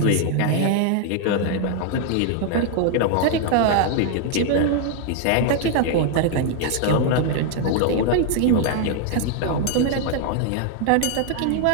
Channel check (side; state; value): both; different; correlation 0.00